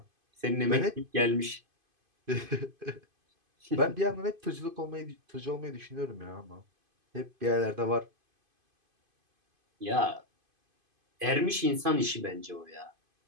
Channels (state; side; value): late; left; 2.5 ms